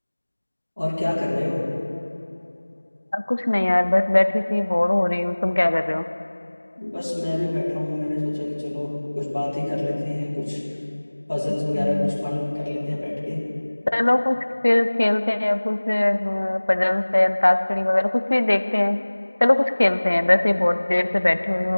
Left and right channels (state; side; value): inverted; both; correlation -1.00